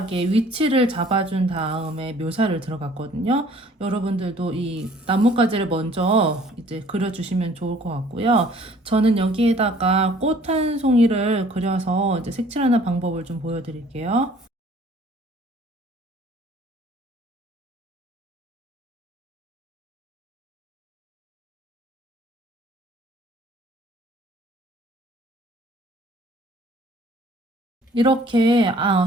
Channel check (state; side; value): normal; both; correlation 0.55